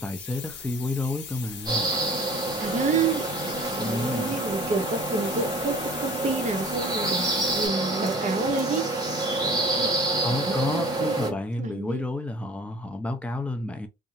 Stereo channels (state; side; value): normal; both; correlation 0.47